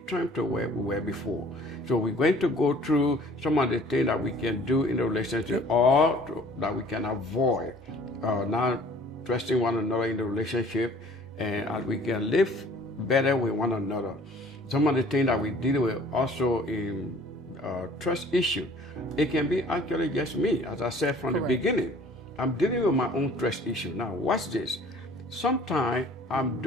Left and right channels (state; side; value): normal; both; correlation 0.52